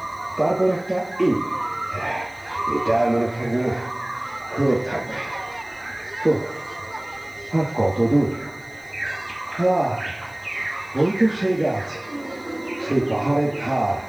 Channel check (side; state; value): left; noise; hiss, 27 dB below the sound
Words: তারপর একটা এটা মনে থাকবে না, খুব থাকবে। তো আর কত দূর? ওই তো সেই গাছ, সেই পাহাড়ের ধার।